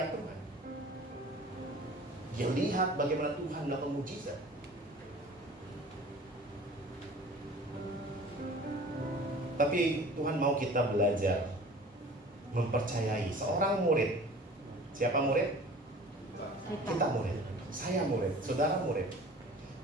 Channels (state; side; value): normal; both; correlation 0.44